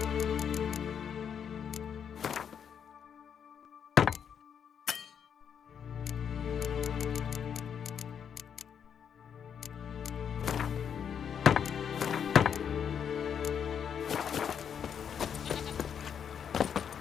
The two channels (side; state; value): right; quieter; 7.9 dB